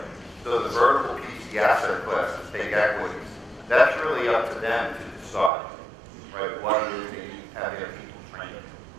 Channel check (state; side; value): drops out; left; at 5.5 s